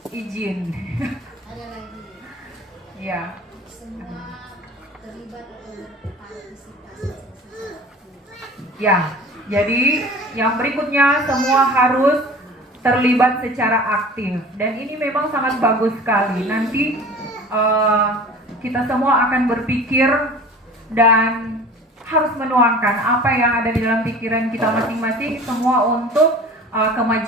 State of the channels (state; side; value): normal; both; correlation 0.41